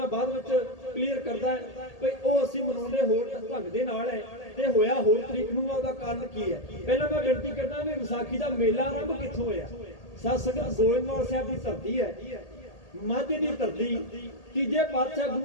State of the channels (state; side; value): late; right; 1.8 ms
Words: ਬਾਅਦ ਵਿੱਚ ਕਲੀਅਰ ਕਰਦਾ ਵੀ ਉਹ ਅਸੀਂ ਮਨਾਉਂਦੇ ਹੋਰ ਢੰਗ ਦੇ ਨਾਲ ਹੈ ਤੇ ਹੋਇਆ ਹੋਰ ਤਰੀਕ ਨੂੰ, ਉਹਦਾ ਕਾਰਨ ਕੀ ਹੈ। ਪਹਿਲਾਂ ਮੈਂ ਬੇਨਤੀ ਕਰਦਾ ਵੀ ਵਿਸਾਖੀ ਦਾ ਮੇਲਾ ਆਰੰਭ ਕਿੱਥੋਂ ਹੋਇਆ। ਸਾਧ ਸੰਗਤ ਗੋਇੰਦਵਾਲ ਸਾਹਿਬ ਦੀ ਧਰਤੀ ਹੈ। ਮਾਝੇ ਦੀ ਧਰਤੀ ਤੀਜੇ ਪਾਤਸ਼ਾਹ